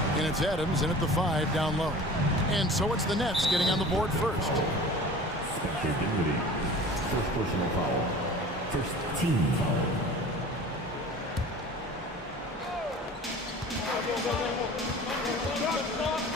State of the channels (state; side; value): normal; both; correlation 0.41